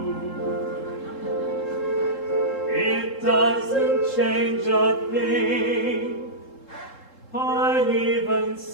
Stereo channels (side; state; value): right; late; 3.7 ms